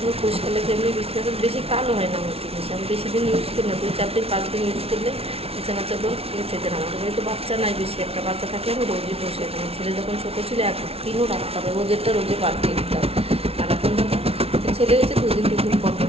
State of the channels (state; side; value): late; left; 0.29 ms